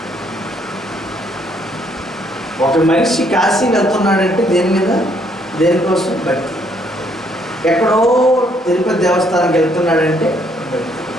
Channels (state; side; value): normal; both; correlation 0.68